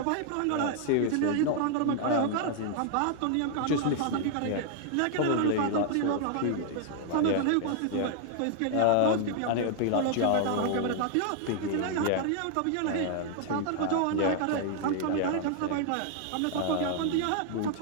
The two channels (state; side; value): different; both; correlation 0.00